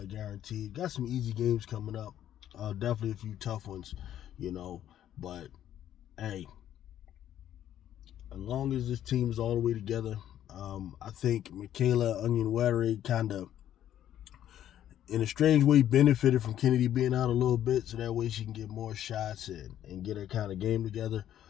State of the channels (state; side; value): quieter; right; 11.2 dB